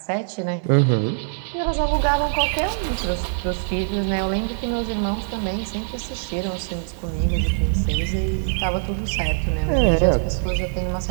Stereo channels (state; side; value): silent; left; digital silence